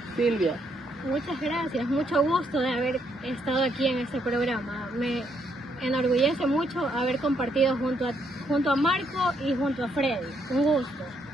Silvia. Muchas gracias, mucho gusto de haber estado aquí en este programa. Me enorgullece mucho haber compartido junto a Marco y junto a Freddy. Un gusto.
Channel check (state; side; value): normal; both; correlation 0.74